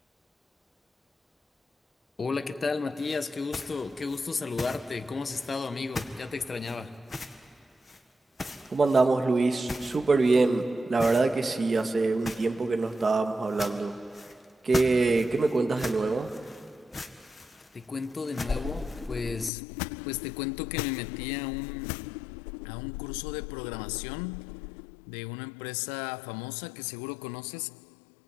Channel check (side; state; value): right; drops out; at 19.5 s